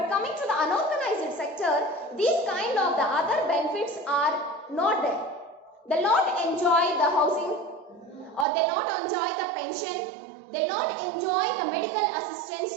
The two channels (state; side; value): drops out; left; at 8.5 s